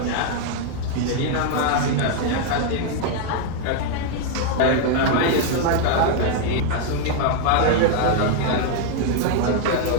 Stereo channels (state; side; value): different; both; correlation 0.00